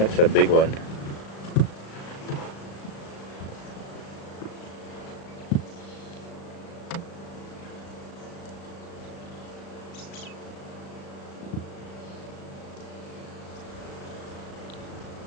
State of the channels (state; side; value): late; right; 36 ms